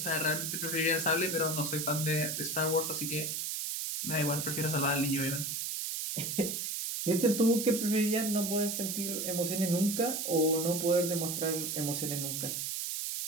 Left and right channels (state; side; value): noise; right; hiss, 2 dB below the sound